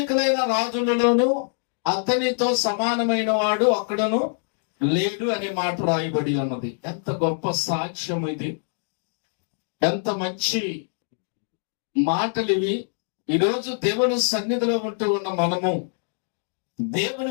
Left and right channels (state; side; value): silent; right; digital silence